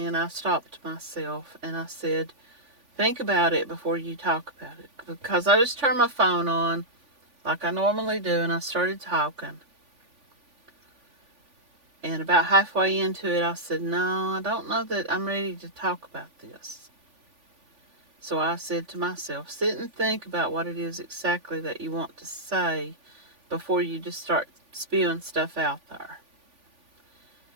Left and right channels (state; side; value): late; left; 3.5 ms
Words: I stopped myself and I said, think about it before you talk about it. Because I just turned my phone on like I normally do, and I started talking. And about halfway into it, I said, no, I don't know that I'm ready to talk about this. So I said to myself, sit and think about what it is exactly that you want to say before you just start spewing stuff out there.